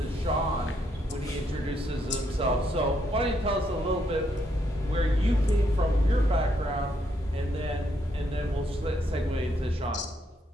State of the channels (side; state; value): both; normal; correlation 0.75